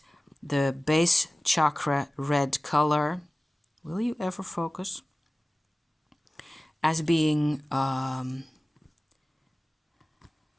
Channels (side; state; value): both; normal; correlation 0.97